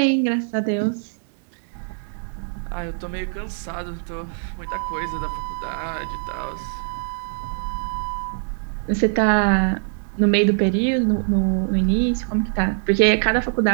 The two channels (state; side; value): silent; left; 59 dB below the other